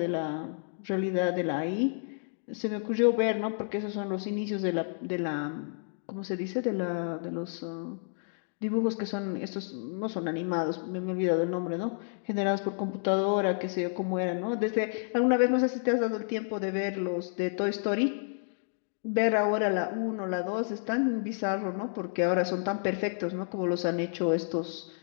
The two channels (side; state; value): right; silent; digital silence